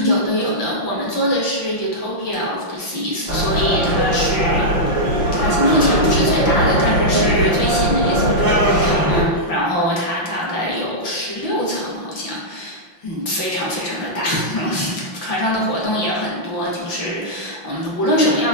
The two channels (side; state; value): right; late; 5.7 ms